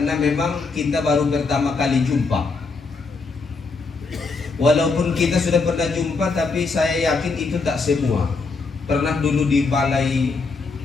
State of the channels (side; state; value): right; quieter; 4.2 dB